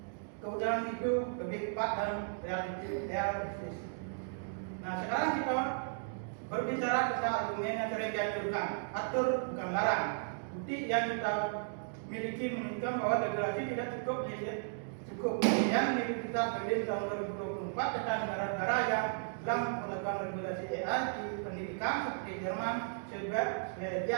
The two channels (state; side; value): silent; left; digital silence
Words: kebenaran itu lebih tepat dan realistis. Nah, sekarang kita berbicara tentang argumen yang sering dianjurkan, atur bukan larang. Bukti yang kita miliki menunjukkan bahwa regulasi tidak cukup. Yang Universitas Berlin tahun 2024 tentang negara-negara yang telah melakukan regulasi AI di pendidikan seperti Jerman,